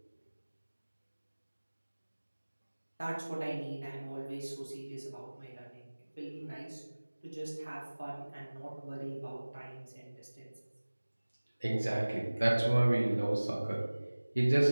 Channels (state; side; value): inverted; both; correlation -1.00